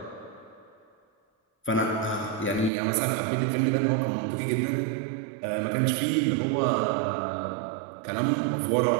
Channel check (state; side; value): drops out; left; at 2.7 s